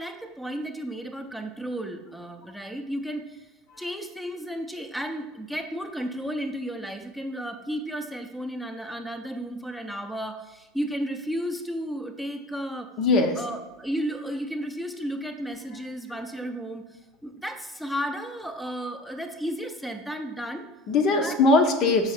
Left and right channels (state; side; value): normal; both; correlation 0.47